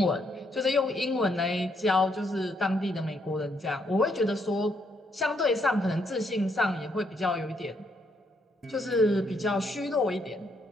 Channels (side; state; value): both; normal; correlation 0.74